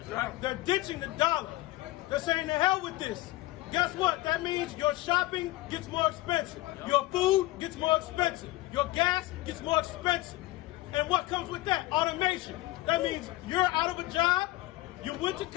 Yeah. They're ditching the dollar. They're saying to hell with this. Guess what? That means your shopping gets more expensive. Your food gets more expensive. Your gas gets more expensive. And what comes with that? Automation. That means you're out of a job, you went to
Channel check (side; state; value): right; quieter; 18.4 dB